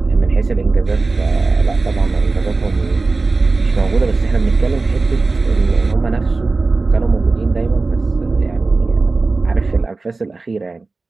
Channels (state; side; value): quieter; left; 3.7 dB